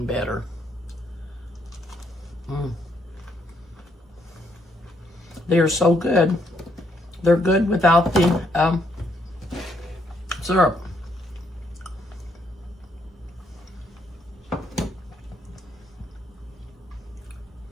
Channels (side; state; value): both; normal; correlation 0.73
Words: better. They're so good. They're good without the syrup.